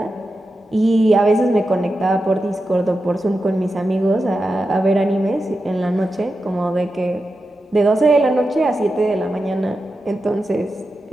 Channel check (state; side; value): normal; both; correlation 0.90